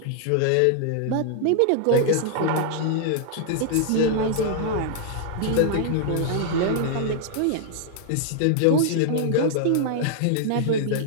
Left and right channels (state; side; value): different; both; correlation 0.00